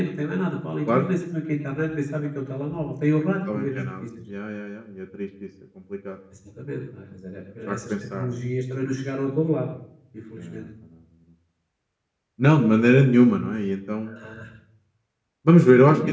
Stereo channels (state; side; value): identical; both; correlation 1.00